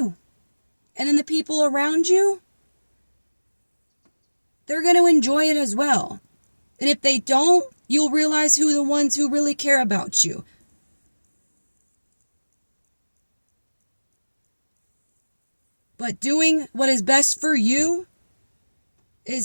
And then the people around you, they're going to enjoy it as well. And if they don't, you'll realize who the ones who really care about you. But doing what is best for you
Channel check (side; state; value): both; inverted; correlation -1.00